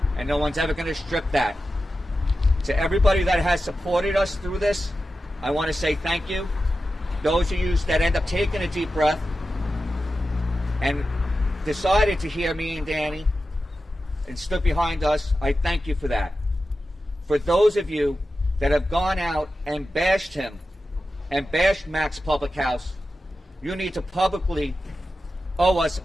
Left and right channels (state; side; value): normal; both; correlation 0.92